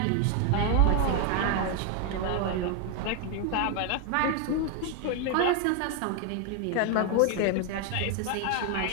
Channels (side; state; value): both; different; correlation 0.01